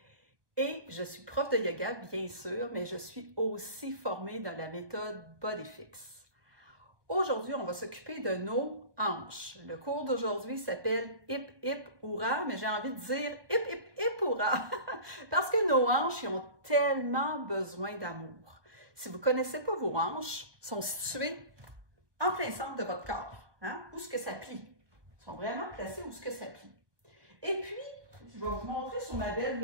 et je suis prof de yoga, bien sûr, mais je suis aussi formée dans la méthode BodyFix. Aujourd'hui, on va s'occuper de nos hanches. Le cours d'aujourd'hui s'appelle Hip Hip Hourra, mais j'ai envie de dire Hip Hip Hip Hourra parce que nos hanches ils ont tellement besoin d'amour. Si vous ne connaissez pas vos hanches, elles sont situées en plein centre de votre corps. Où est-ce que ça plie? Ils sont vraiment placés où est-ce que ça plie. Et puis, je vais vous montrer sur ma belle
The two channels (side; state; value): left; late; 1.2 ms